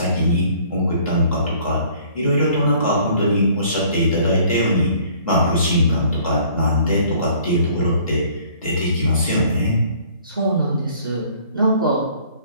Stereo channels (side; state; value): both; inverted; correlation -0.56